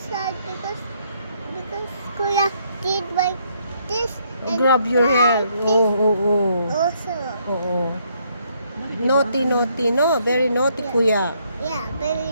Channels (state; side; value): inverted; both; correlation -0.71